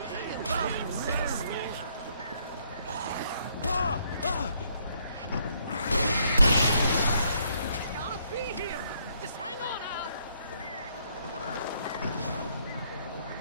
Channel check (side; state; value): both; inverted; correlation -0.70